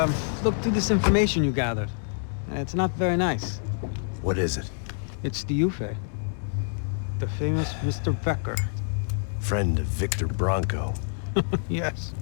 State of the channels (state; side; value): silent; right; digital silence